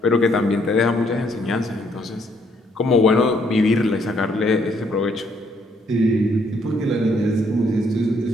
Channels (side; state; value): both; normal; correlation 0.69